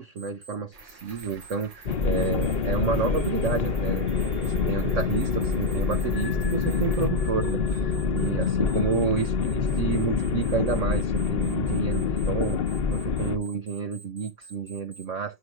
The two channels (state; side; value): late; left; 1.8 ms